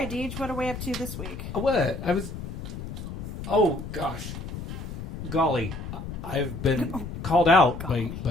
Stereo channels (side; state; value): left; noise; rumble, 8 dB below the sound